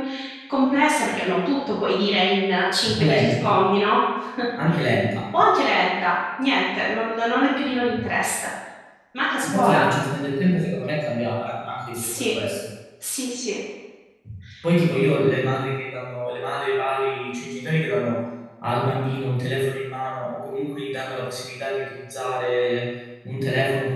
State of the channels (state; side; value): identical; both; correlation 1.00